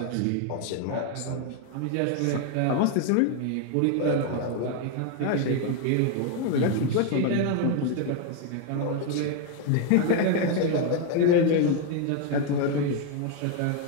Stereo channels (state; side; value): different; both; correlation 0.01